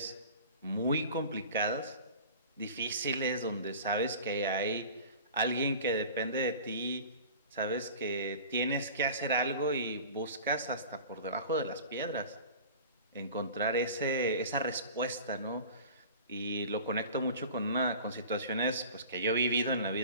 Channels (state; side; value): inverted; both; correlation -0.39